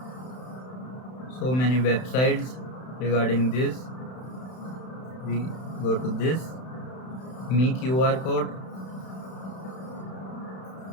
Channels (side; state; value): right; late; 31 ms